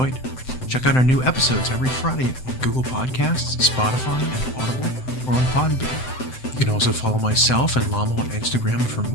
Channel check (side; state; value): right; late; 7.8 ms